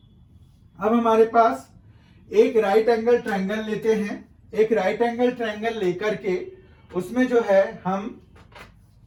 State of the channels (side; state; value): both; identical; correlation 1.00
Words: हमारे पास एक राइट एंगल ट्रायंगल लेते हैं। एक राइट एंगल ट्रायंगल लेकर के उसमें जो है हम